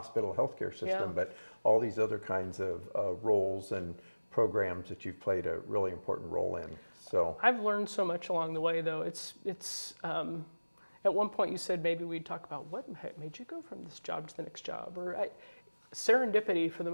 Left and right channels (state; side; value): inverted; both; correlation -1.00